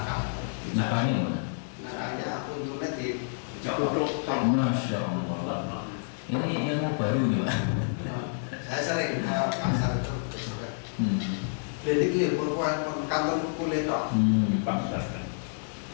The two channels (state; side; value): silent; right; digital silence